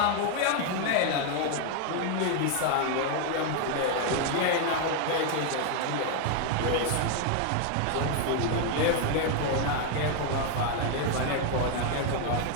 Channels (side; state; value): both; different; correlation 0.01